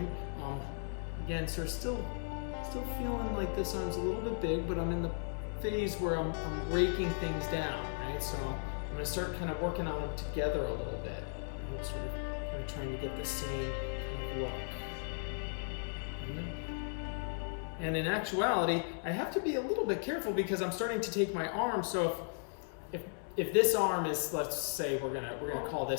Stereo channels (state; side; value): silent; right; 54 dB below the other